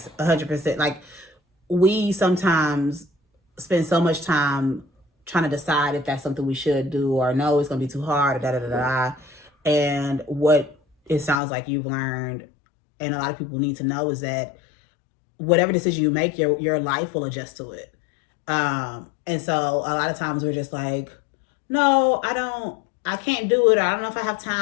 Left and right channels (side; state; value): right; drops out; at 11.4 s